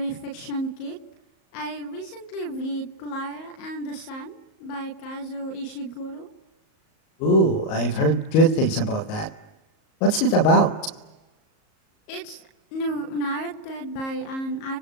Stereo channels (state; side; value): late; right; 38 ms